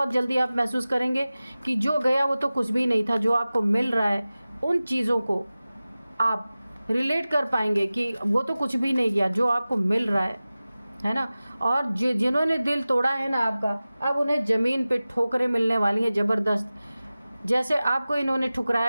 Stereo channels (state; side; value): inverted; both; correlation -0.97